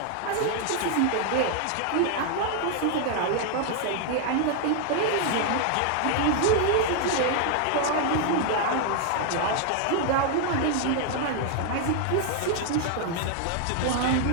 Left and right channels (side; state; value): both; different; correlation 0.00